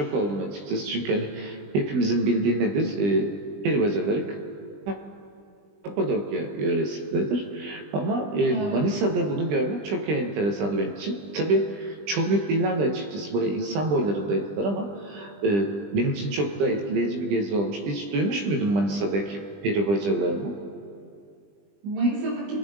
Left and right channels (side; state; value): left; late; 20 ms